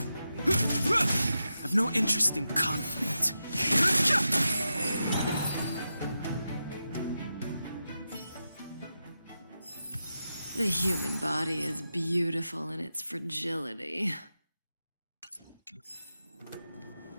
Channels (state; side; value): inverted; both; correlation -0.89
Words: I've no interest in conflict. The human body is beautiful in its fragility.